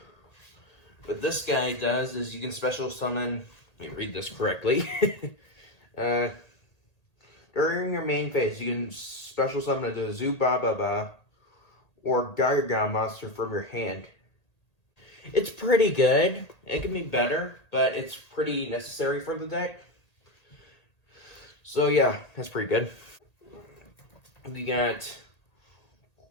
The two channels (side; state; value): right; late; 1.8 ms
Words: What this guy does is you can special summon, let me read this correctly. During your main phase, you can special summon a Zubababa or Gogogo monster from your hand. It's pretty good. It can be better, but it's pretty necessary for the deck. So yeah, that's pretty good. We got